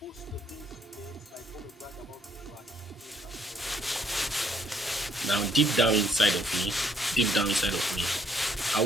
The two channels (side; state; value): both; normal; correlation 0.66